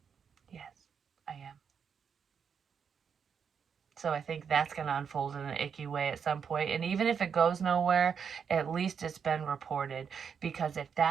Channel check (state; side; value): quieter; left; 6.9 dB